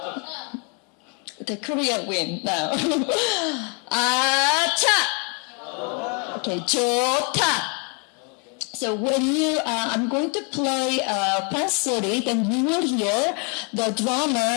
The Korean win now. Acha! Okay, 좋다. So when I'm going to play Pansori, then you will hear the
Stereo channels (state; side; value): quieter; right; 36.7 dB